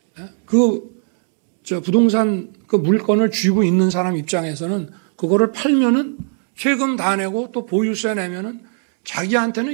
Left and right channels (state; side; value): silent; left; 56 dB below the other